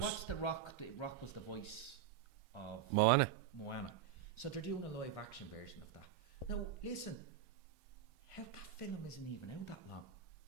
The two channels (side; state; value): left; quieter; 9.7 dB